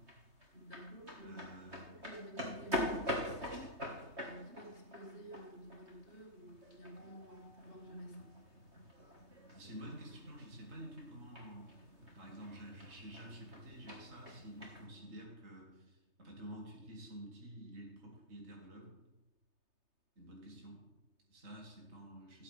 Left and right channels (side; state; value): left; late; 3.2 ms